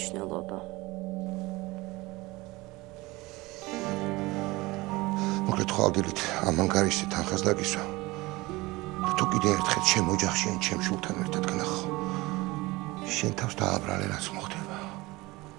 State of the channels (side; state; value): left; quieter; 21.5 dB